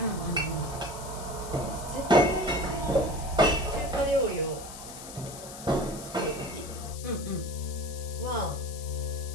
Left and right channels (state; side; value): noise; left; hiss, 13 dB below the sound